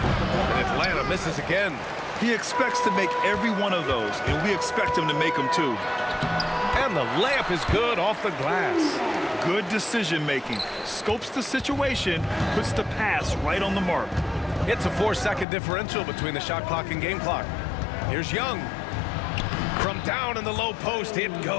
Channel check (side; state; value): right; drops out; at 15.5 s